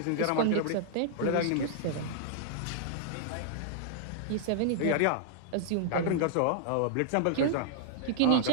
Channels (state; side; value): different; both; correlation -0.01